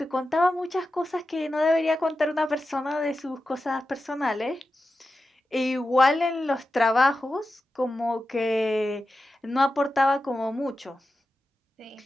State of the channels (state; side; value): normal; both; correlation 0.92